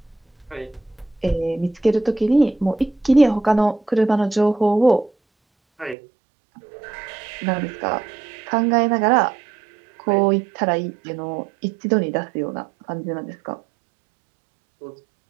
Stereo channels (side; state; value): left; drops out; at 6.0 s